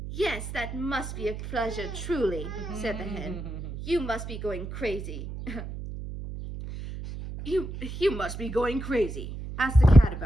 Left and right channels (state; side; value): noise; right; hum, 8 dB below the sound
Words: "Yes, that must be a pleasure, truly," said the hen. "You must be going crazy." You must be going crazy. Ask the cat